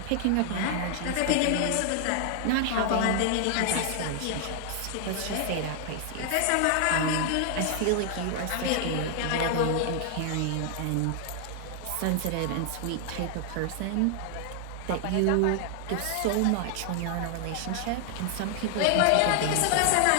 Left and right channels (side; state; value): both; different; correlation 0.00